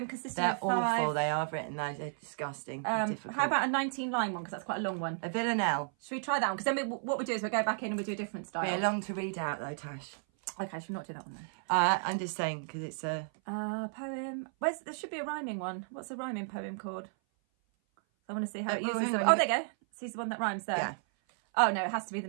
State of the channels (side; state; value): left; silent; 56 dB below the other